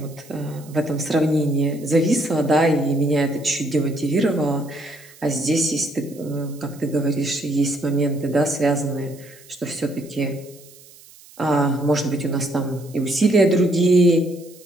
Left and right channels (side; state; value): right; noise; hiss, 23 dB below the sound